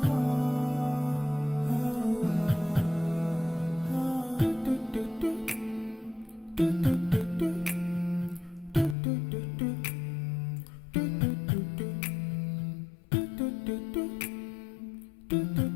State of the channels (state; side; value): drops out; right; at 9.0 s